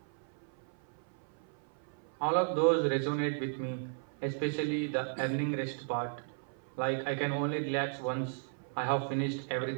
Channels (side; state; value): left; silent; 55 dB below the other